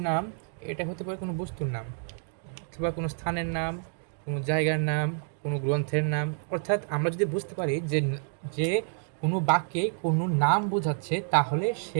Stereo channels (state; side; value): silent; left; 59 dB below the other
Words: নাম, এটা হতে পারে কোনো বস্তুর নাম, অথবা কোনো স্থানের নাম, কোনো জায়গার নাম, কোনো গ্রন্থের নাম। অর্থাৎ আমরা যদি বুঝতে পারি যে যে কোনো বাক্যে কোনো নাম বোঝাচ্ছে, তাহলে